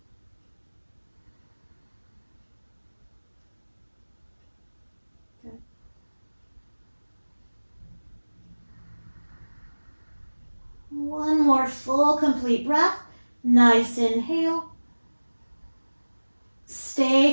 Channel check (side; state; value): both; inverted; correlation -1.00